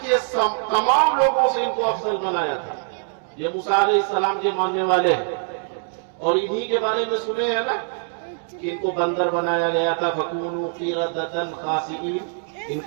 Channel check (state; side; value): silent; left; digital silence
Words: کے تمام لوگوں سے ان کو افضل بنایا تھا۔ یہ موسیٰ علیہ السلام کے ماننے والے ہیں، اور انہی کے بارے میں سنے ہیں نا کہ ان کو بندر بنایا گیا تھا، فَكُونُوا قِرَدَةً خَاسِئِينَ، ان